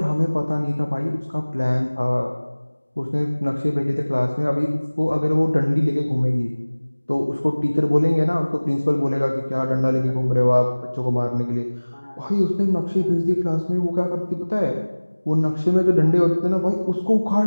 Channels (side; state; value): both; inverted; correlation -1.00